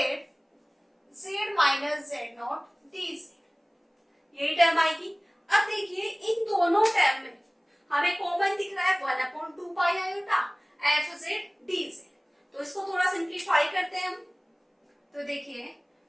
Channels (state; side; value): identical; both; correlation 1.00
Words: Z minus Z naught D z, यही term आएगी। अब देखिए इन दोनों टर्म में हमें कॉमन दिख रहा है 1/2 iota f z d Z, तो इसको थोड़ा सिंप्लीफाई करते हैं हम। तो देखिए